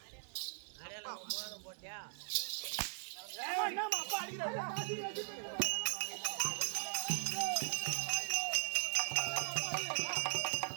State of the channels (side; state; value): left; silent; 51 dB below the other